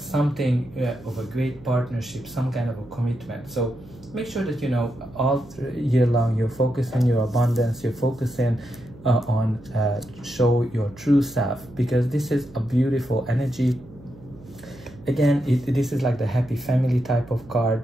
of a great partnership, some kind of a commitment. So make sure that, you know, all year long you're focusing on your abundance, you're focusing on show your true self, because this is a beautiful energy. Again, this is like the happy family type of card.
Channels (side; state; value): right; noise; hum, 21 dB below the sound